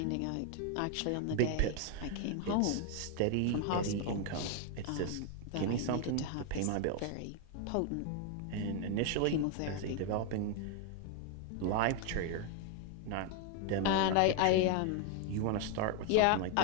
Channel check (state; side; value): different; both; correlation 0.01